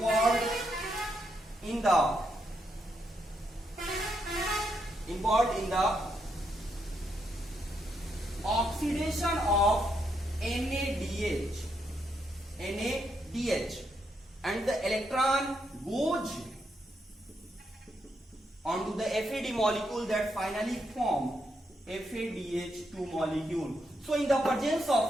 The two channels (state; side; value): normal; both; correlation 0.79